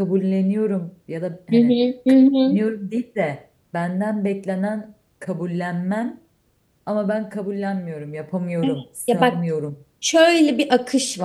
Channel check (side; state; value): both; identical; correlation 1.00